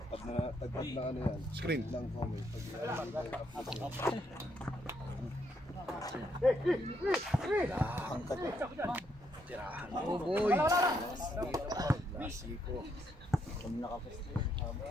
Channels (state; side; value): normal; both; correlation 0.75